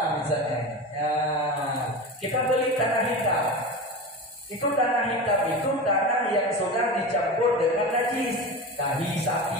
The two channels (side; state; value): both; normal; correlation 0.27